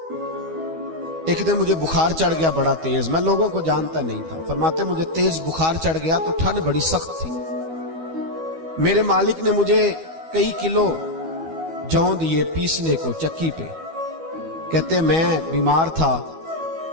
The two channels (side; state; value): left; late; 12 ms